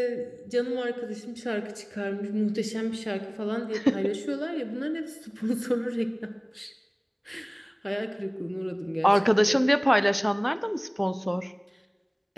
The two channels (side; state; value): both; identical; correlation 1.00